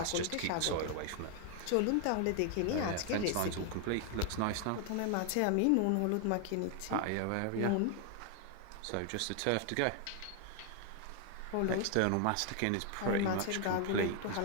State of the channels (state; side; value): different; both; correlation 0.00